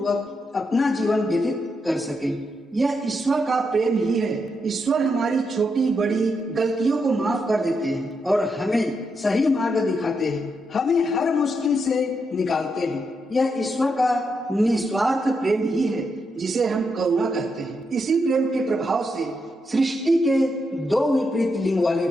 अपना जीवन व्यतीत कर सकें। यह ईश्वर का प्रेम ही है। ईश्वर हमारी छोटी बड़ी गलतियों को माफ कर देते हैं और हमें सही मार्ग दिखाते हैं, हमें हर मुश्किल से निकालते हैं। यह ईश्वर का निस्वार्थ प्रेम ही है, जिसे हम करुणा कहते हैं। इसी प्रेम के प्रभाव से सृष्टि के दो विपरीत लिंग वाले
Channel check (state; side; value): normal; both; correlation 0.82